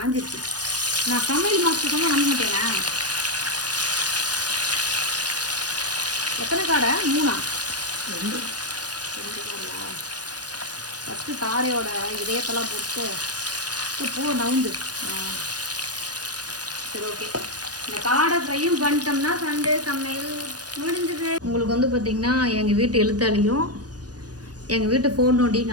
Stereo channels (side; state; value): left; late; 0.69 ms